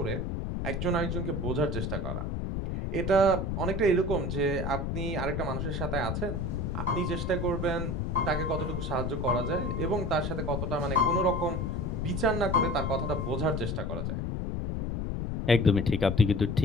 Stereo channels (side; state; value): left; noise; rumble, 2 dB below the sound